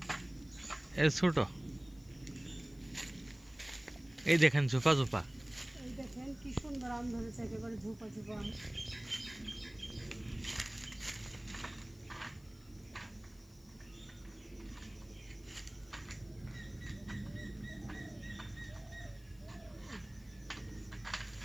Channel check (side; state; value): left; noise; hiss, 27 dB below the sound